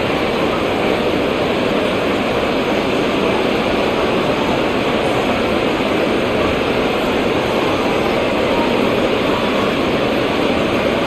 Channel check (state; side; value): identical; both; correlation 1.00